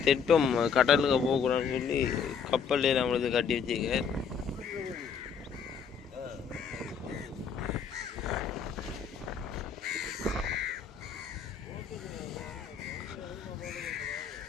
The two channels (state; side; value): quieter; right; 6.6 dB